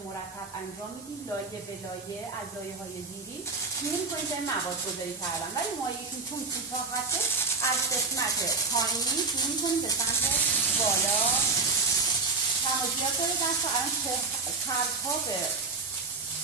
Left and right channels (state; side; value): quieter; left; 4.3 dB